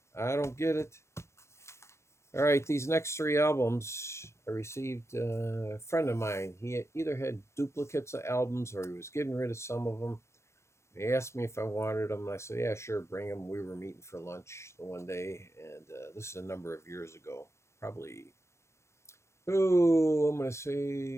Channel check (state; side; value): late; right; 0.13 ms